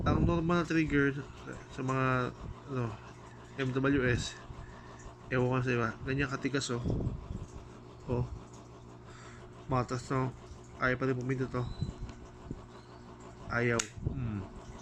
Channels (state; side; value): identical; both; correlation 1.00